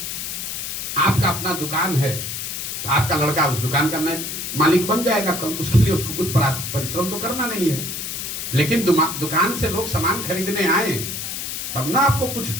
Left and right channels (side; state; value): left; noise; hiss, 5 dB below the sound